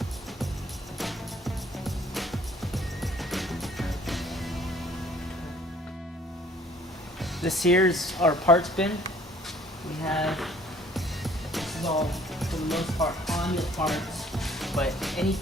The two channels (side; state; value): both; normal; correlation 0.57